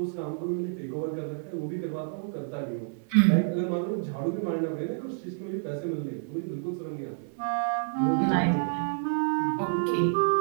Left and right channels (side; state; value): left; silent; 59 dB below the other